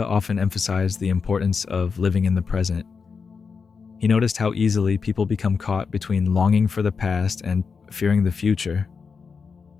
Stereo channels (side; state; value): right; quieter; 5.4 dB